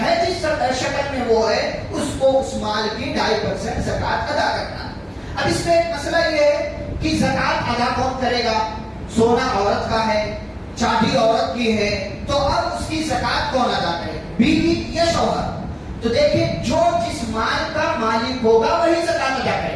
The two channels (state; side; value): identical; both; correlation 1.00